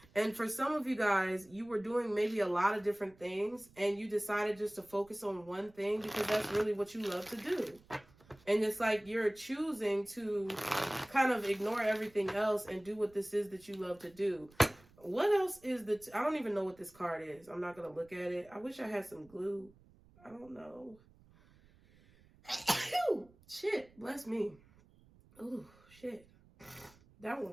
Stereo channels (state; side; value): noise; right; rumble, 27 dB below the sound